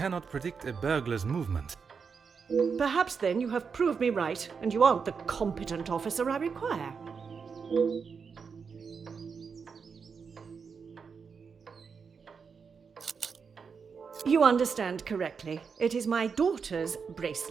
predict a burglar's movement. Perhaps then you have proved me right, and you aren't the competent officer I require. You understand correctly. It is my daughter's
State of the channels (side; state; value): left; quieter; 5.8 dB